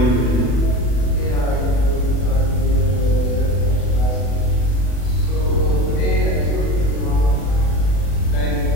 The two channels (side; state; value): right; late; 40 ms